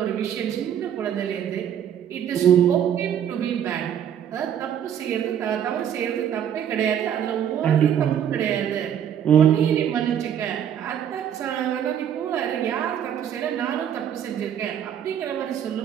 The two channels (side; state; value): left; quieter; 9.4 dB